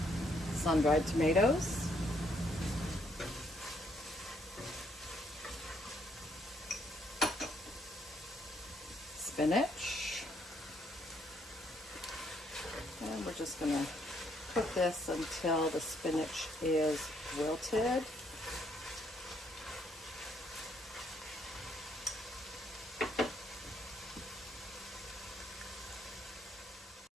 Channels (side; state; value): both; normal; correlation 0.71